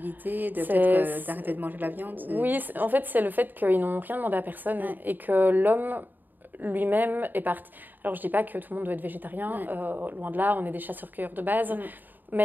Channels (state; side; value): late; left; 0.089 ms